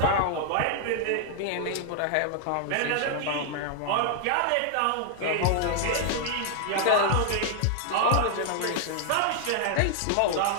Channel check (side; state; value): both; different; correlation 0.00